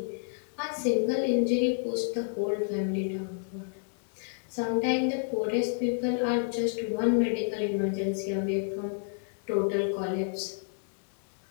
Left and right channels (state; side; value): silent; right; digital silence